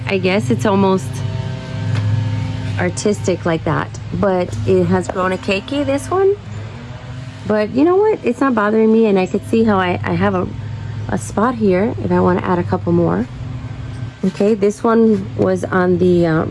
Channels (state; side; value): identical; both; correlation 1.00